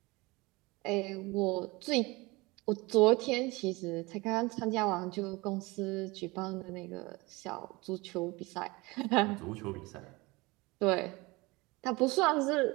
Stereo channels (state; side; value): quieter; left; 23.5 dB